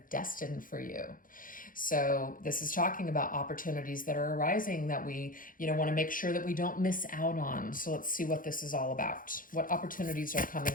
destined for you? So this is talking about opportunities that are arising that we, you know, want to make sure that we don't miss out on. So let's see what this is all about. What opportunities are coming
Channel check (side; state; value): right; late; 0.40 ms